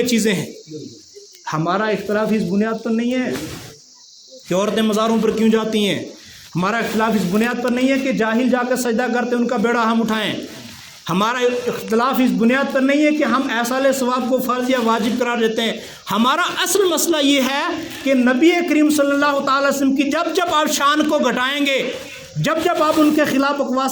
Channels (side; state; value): both; identical; correlation 1.00